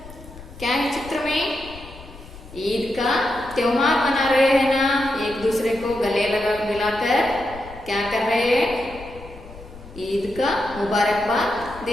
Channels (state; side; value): noise; left; rumble, 17 dB below the sound